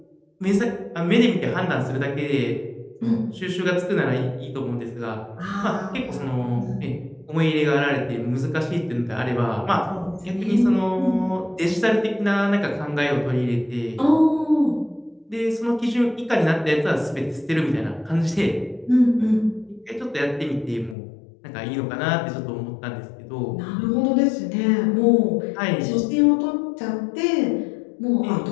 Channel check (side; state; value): right; drops out; at 21.0 s